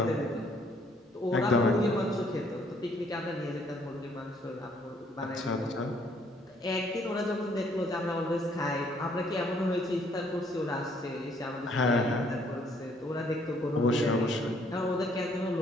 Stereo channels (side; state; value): both; normal; correlation 0.65